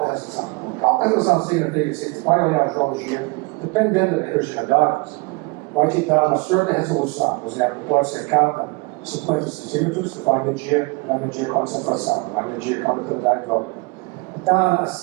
resolução? A alta resolução significa que você vai olhar a geologia, dependendo da heterogeneidade, vai te dar uma certa resolução. Por exemplo, pode ser cada 50 centímetros, que vai medir a concentração, vai medir a condutividade hidráulica. Então, a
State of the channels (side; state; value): left; quieter; 26.7 dB